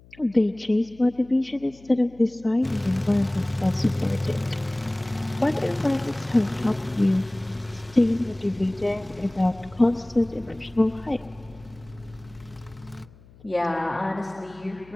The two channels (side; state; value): left; noise; hum, 25 dB below the sound